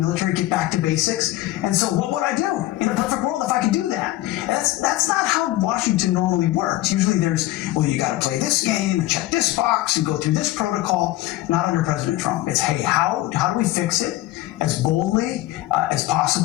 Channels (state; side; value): quieter; right; 16.5 dB